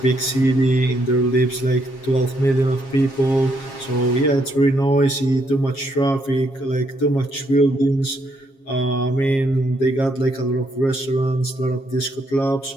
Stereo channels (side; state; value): right; late; 7.4 ms